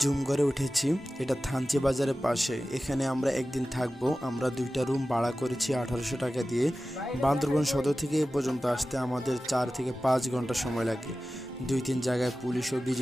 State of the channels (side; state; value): both; normal; correlation 0.95